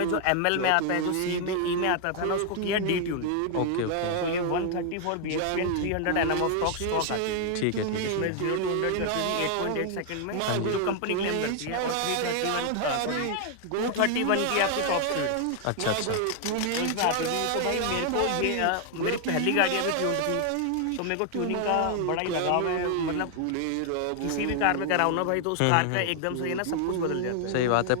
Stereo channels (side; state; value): both; different; correlation 0.00